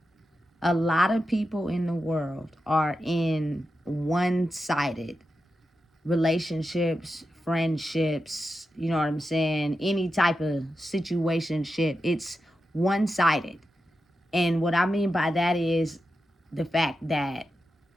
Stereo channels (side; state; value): both; normal; correlation 0.89